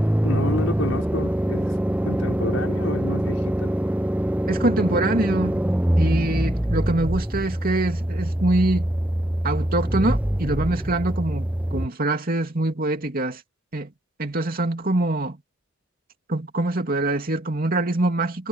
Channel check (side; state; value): both; normal; correlation 0.74